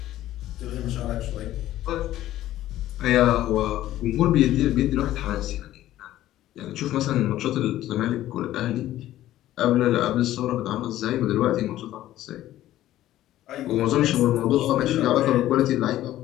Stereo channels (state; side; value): quieter; right; 13.9 dB